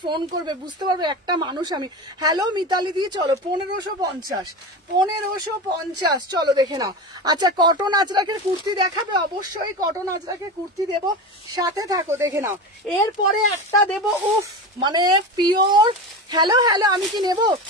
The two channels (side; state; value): both; normal; correlation 0.25